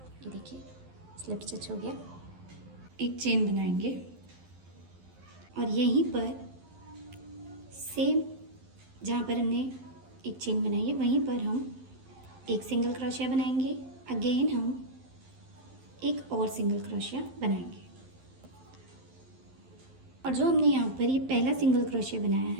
ये देखिए, स्लिप स्टिच हो गया। एक चेन बनाएंगे और यहीं पर सेम जहाँ पर हमने एक चेन बनाई है वहीं पर हम एक सिंगल क्रोशिया बनाएंगे। अगेन हम एक और सिंगल क्रोशिया बनाएंगे और जो हमने यहाँ पर ये पहला सिंगल क्रोशिया बनाया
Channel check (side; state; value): left; late; 11 ms